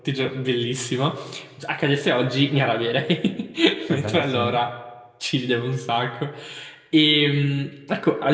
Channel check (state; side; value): identical; both; correlation 1.00